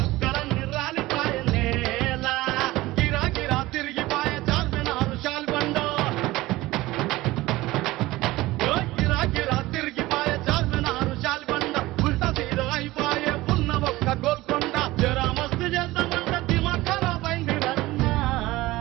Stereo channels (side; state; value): left; quieter; 18.6 dB